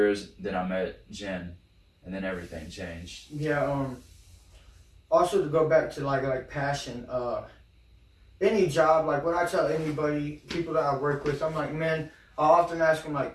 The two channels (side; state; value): both; identical; correlation 1.00